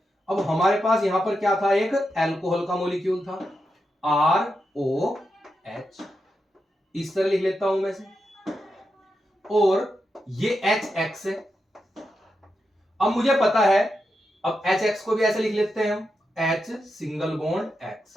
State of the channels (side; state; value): both; normal; correlation 0.87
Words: अब हमारे पास यहां पर क्या था, एक अल्कोहल का मॉलिक्यूल था ROH, इस तरह लिख लेता हूं मैं से, और ये HX है। अब मुझे पता है, अब HX को भी ऐसे लिख लेते हैं हम, H सिंगल बॉन्ड X,